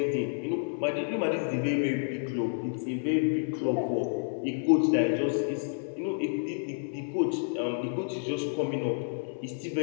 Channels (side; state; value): right; silent; digital silence